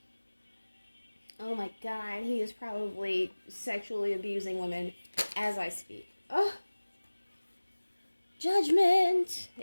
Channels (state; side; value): inverted; both; correlation -1.00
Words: Oh my god, he is probably sexually abusing women as I speak. Oh, judgment.